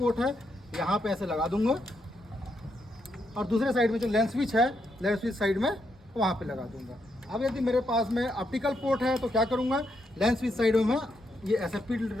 है यहाँ पे ऐसे लगा दूंगा, और दूसरे साइड में जो लेंस स्विच है, लेंस स्विच साइड में वहाँ पे लगा दूंगा। अब यदि मेरे पास में ऑप्टिकल पोर्ट है तो क्या करूँगा, लेंस स्विच साइड में मैं ये SFP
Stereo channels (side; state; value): both; normal; correlation 0.80